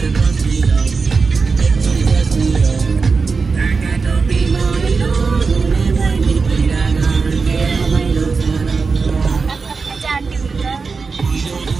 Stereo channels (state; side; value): quieter; left; 4.7 dB